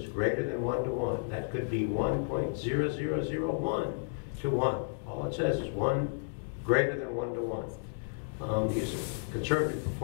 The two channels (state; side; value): silent; right; digital silence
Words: greater than 1 to 1. That could be 1.0001 to 1. All it says is greater than 1 to 1. These are conservative